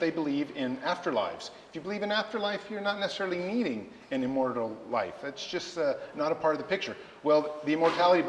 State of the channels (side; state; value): both; identical; correlation 1.00